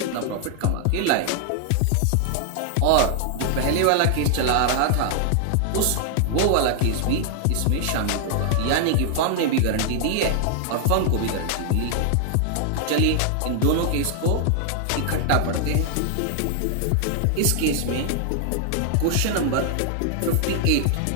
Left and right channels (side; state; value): both; different; correlation 0.00